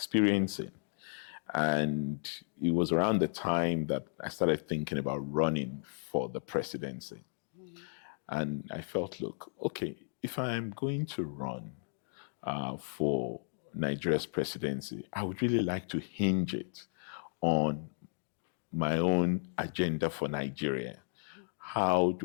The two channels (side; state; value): right; silent; digital silence